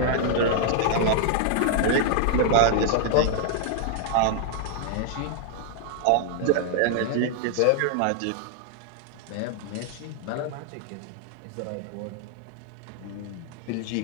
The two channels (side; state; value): both; different; correlation 0.00